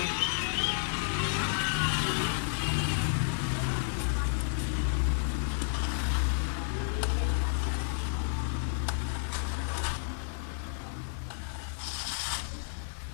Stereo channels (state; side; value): silent; right; digital silence